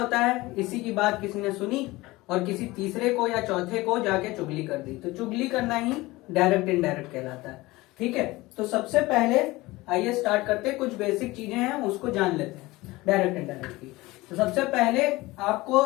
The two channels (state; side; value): quieter; right; 20.2 dB